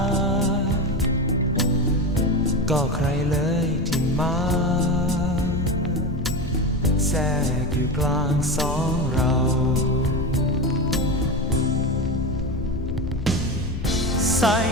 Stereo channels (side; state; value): left; noise; rumble, 7 dB below the sound